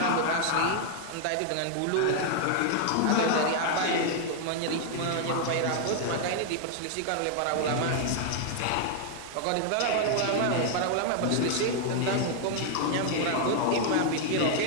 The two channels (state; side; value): different; both; correlation 0.00